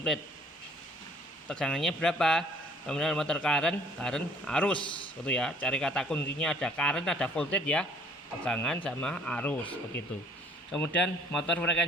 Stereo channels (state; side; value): normal; both; correlation 0.57